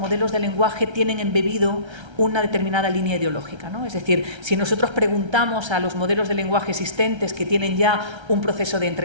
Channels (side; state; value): left; late; 1.3 ms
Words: de lenguaje tienen embebido una determinada línea ideológica, ¿no? Es decir, si nosotros preguntamos a los modelos de lenguaje existentes que tienen ya un proceso de